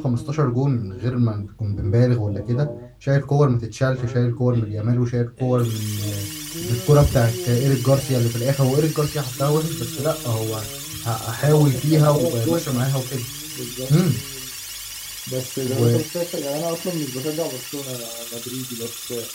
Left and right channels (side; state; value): both; identical; correlation 1.00